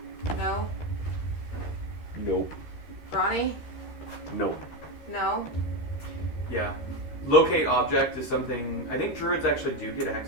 No? Nope. Ronnie? Nope. No? Yeah. Locate object is something I think druids actually do get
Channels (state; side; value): late; right; 13 ms